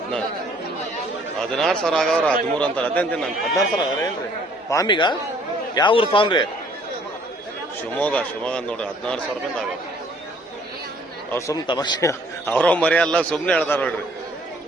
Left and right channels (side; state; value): both; normal; correlation 0.60